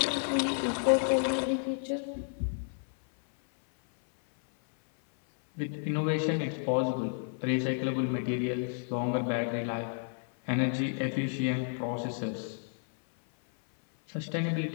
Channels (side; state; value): right; silent; 57 dB below the other